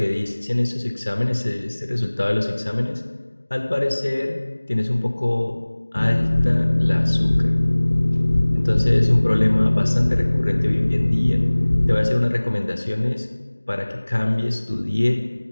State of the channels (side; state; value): both; inverted; correlation -1.00